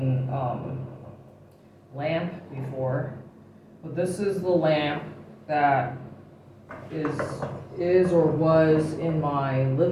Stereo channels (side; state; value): both; identical; correlation 1.00